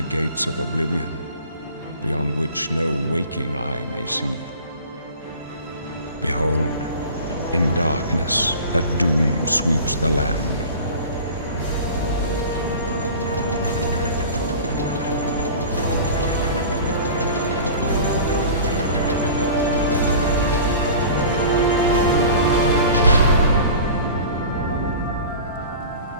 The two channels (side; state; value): both; inverted; correlation -0.40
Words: gates of Oblivion, beyond which no waking eye may see. Behold, in darkness, a doom sweeps the land.